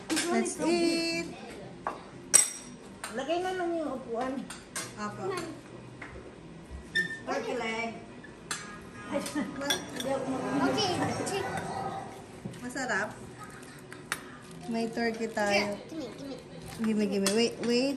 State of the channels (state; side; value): identical; both; correlation 1.00